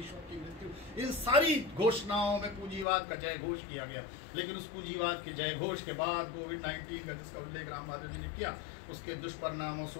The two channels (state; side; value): drops out; right; at 2.9 s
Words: की मृत्यु, इन सारी घोषणाओं में पूंजीवाद का जय घोष किया गया। लेकिन उस पूंजीवाद के जय घोष के बाद कोविड-19 का जिसका उल्लेख राम माधव जी ने किया, उसके दुष्परिणामों